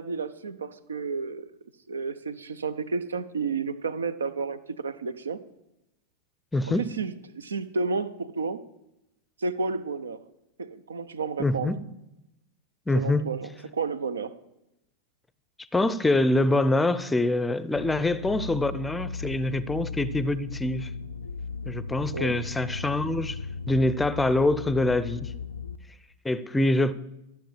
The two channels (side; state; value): both; normal; correlation 0.53